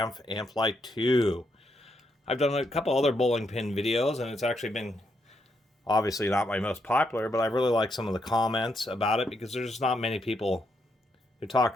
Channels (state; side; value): normal; both; correlation 0.79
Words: II. I've done a couple other bowling pin videos, and it's actually been obviously not my most popular, but I really like some of the comments about it because there's just not many people who talk